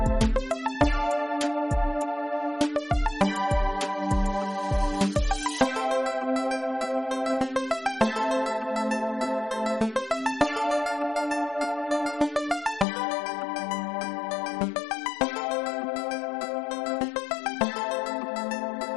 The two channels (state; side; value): drops out; right; at 12.9 s